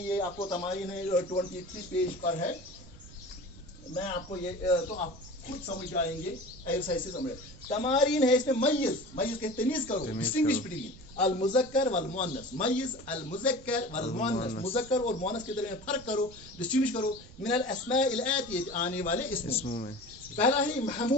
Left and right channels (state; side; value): noise; right; rumble, 19 dB below the sound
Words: ये आपको तमारीन है 23 पेज पर है, मैं आपको ये तो आप खुद समझ जाएंगे, एक्सरसाइज से समझ। तमारीन है इसमें, मय्यज़, मय्यज़ के तमीज़ करो, डिस्टिंग्विश बिटवीन अल मुज़क्कर वल मुअन्नस, मय्यज़ अल मुज़क्कर वल मुअन्नस, मुज़क्कर और मुअन्नस के दरमियान फर्क करो, डिस्टिंग्विश करो। मिनल अस्माइल आतियत, आने वाले इसमों में। पहला ही